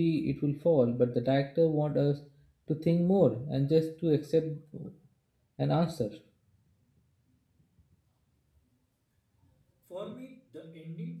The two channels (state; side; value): identical; both; correlation 1.00